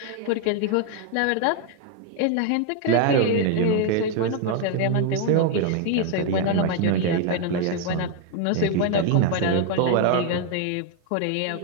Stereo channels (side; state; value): both; different; correlation 0.01